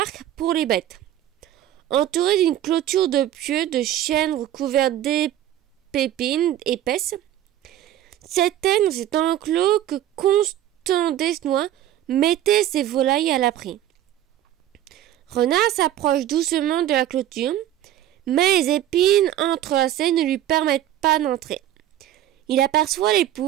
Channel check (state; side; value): quieter; left; 12.2 dB